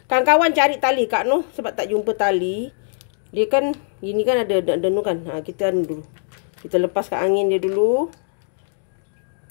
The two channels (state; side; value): silent; right; 65 dB below the other